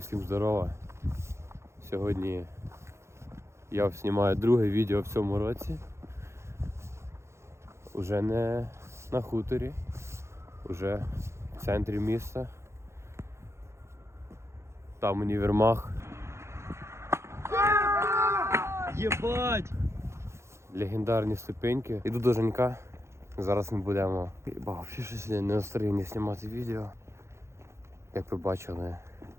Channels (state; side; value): late; left; 0.13 ms